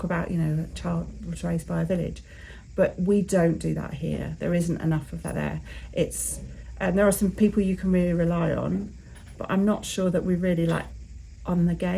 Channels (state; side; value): identical; both; correlation 1.00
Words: about, a child was raised by a village. but we don't do that here. There isn't enough of that there. There are some people you can really rely on, but I'm not sure that we really like on the